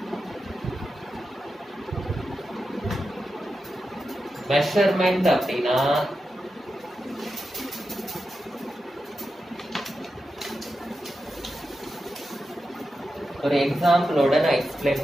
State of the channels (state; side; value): normal; both; correlation 0.90